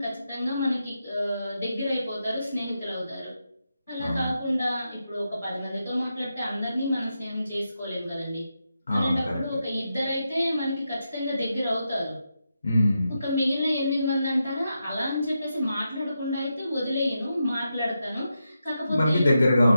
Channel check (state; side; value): inverted; both; correlation -0.87